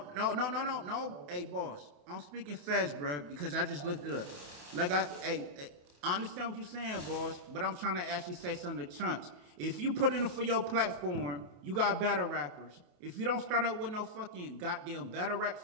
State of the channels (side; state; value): left; late; 28 ms